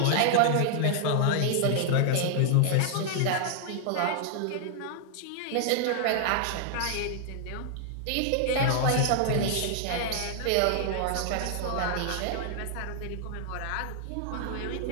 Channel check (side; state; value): both; different; correlation -0.01